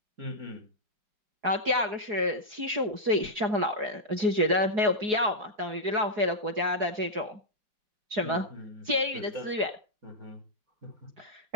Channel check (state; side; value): late; left; 4.8 ms